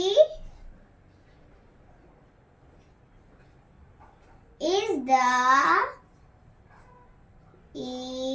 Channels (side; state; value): both; identical; correlation 1.00